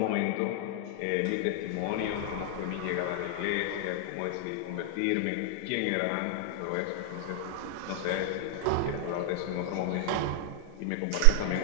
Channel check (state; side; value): different; both; correlation 0.00